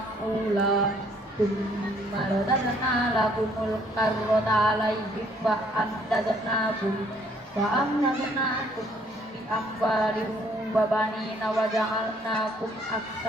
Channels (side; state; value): both; normal; correlation 0.64